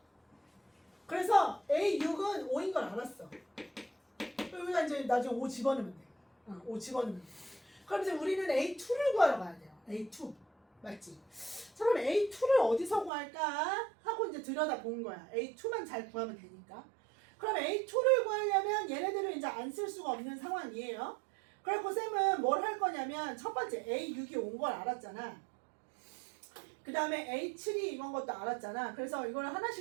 그래서 A6은 5인 걸 알았어. 여기다 이제 나중에 5 집어넣으면 돼. 5 집어넣으면 돼. 그럼 이제 우리는 A2를 구하러 가야 돼요. A2. 맞지? 자, 그럼 A2를 어디서 구할까? 하고 이제 들여다 본 거야. A2만 잘 구하면 되니까. 그럼 A2를 구하려면 얘네들을 이제 안 쓸 수가 없는 상황이에요. 그래서 쌤은 뭘 할 거냐면 첫 번째 A6이 온 걸 알았잖아. 그 다음에 A7이 이건 것도 알았잖아. 그래서 이걸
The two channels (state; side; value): drops out; left; at 13.1 s